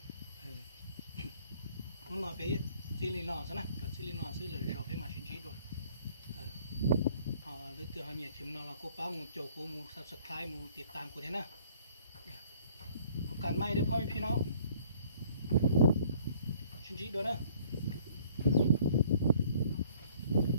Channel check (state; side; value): inverted; both; correlation -0.58